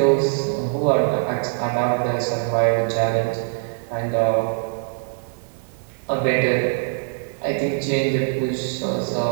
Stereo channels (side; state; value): left; silent; 64 dB below the other